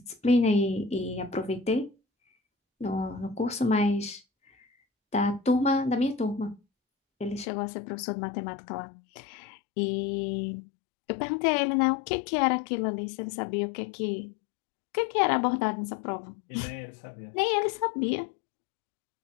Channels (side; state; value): right; drops out; at 7.5 s